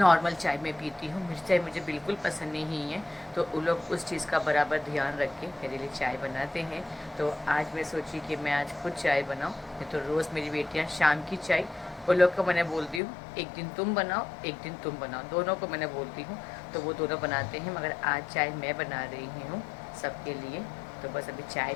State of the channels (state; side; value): drops out; right; at 13.0 s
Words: चाय मैं पीती हूँ, मीठी चाय मुझे बिल्कुल पसंद नहीं है। तो उन लोग उस चीज़ का बराबर ध्यान रख के मेरे लिए चाय बनाते हैं। तो आज मैं सोची कि मैं आज खुद चाय बनाऊँ, नहीं तो रोज़ मेरी बेटियाँ शाम की चाय, उन लोग को मैंने बोलती हूँ एक दिन तुम बनाओ एक दिन तुम बनाओ, दोनों को मैंने बोलती हूँ, तो वो दोनों बनाते हैं। मगर आज चाय मैं बना रही हूँ सबके लिए। तो बस अभी चाय